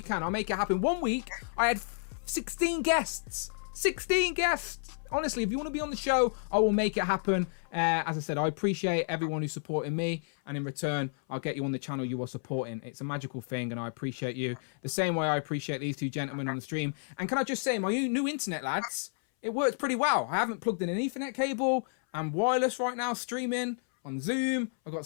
can. I'll make it happen. 1 week, I had 16 guests. 16 guests. Honestly, if you want to be on the show, I will make it happen. As I said, I appreciate everyone who's supporting me, and in return, I'll get you on the channel you are supporting. It's a magical thing, and I appreciate you the same way I appreciate these two gentlemen on the stream. And can I just say, my new internet, lads, it works pretty well. I haven't plugged in an Ethernet cable. I'm wireless right now, streaming on Zoom. I've got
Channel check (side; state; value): right; silent; 57 dB below the other